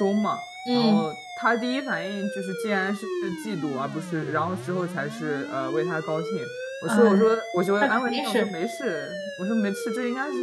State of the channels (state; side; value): identical; both; correlation 1.00